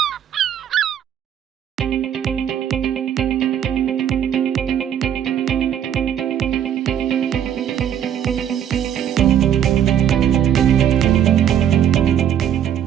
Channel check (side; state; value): left; quieter; 9.7 dB